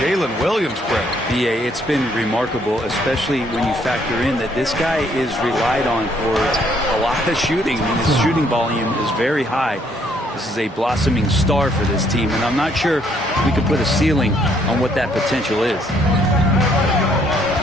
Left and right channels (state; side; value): normal; both; correlation 0.67